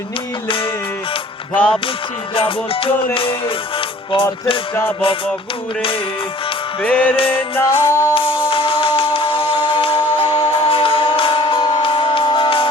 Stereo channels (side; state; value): both; normal; correlation 0.51